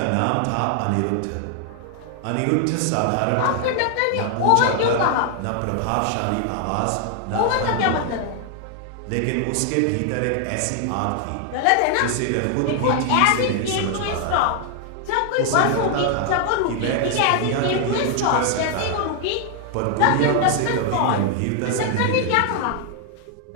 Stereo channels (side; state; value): both; different; correlation 0.00